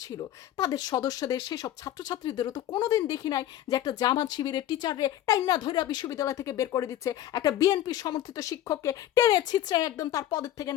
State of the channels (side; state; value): right; quieter; 12.3 dB